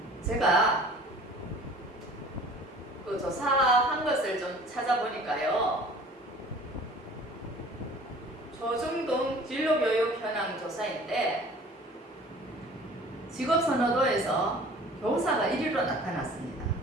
제가 그 조사한 것을 좀 찾아보니까요. 조중동 진로교육 현황 조사인데 직업선호도에서 교사가 1위로 나타났습니다.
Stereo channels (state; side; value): normal; both; correlation 0.48